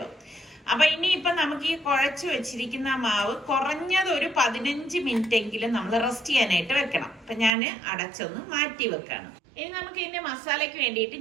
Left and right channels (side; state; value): left; drops out; at 7.5 s